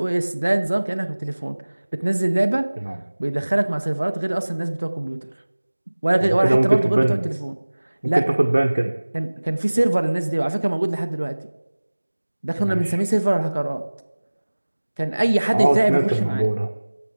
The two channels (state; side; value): inverted; both; correlation -1.00